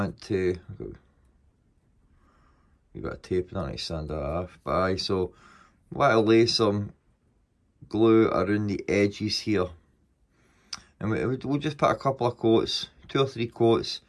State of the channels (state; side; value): identical; both; correlation 1.00